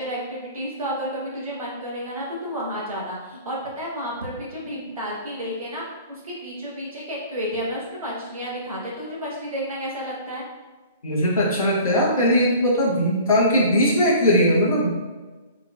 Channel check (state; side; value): inverted; both; correlation -0.45